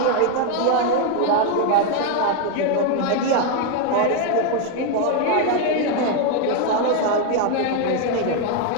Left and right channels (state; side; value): different; both; correlation 0.01